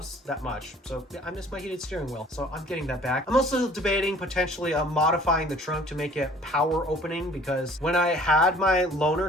that much. So yeah, I missed my heated steering wheel. So I'm getting that back. I'm also debating potentially modifying the trunk to make it power opening, because when I had my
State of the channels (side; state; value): both; normal; correlation 0.53